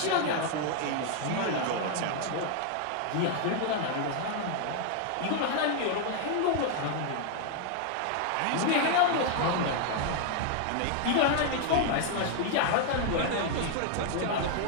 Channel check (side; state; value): both; different; correlation 0.00